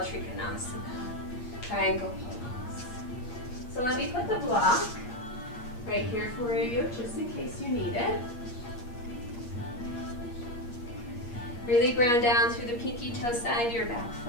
triangle pose. So let me put the block right here for you, just in case you need it. Really ground down through the pinky toe side of your back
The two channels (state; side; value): late; right; 8.4 ms